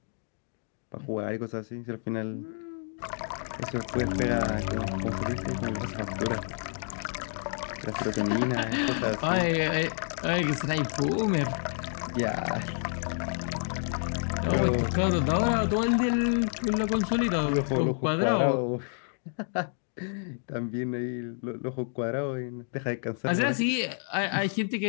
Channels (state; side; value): silent; right; 58 dB below the other